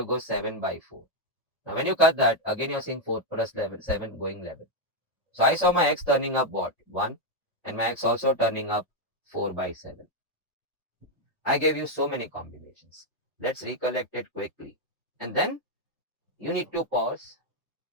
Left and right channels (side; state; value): both; normal; correlation 0.02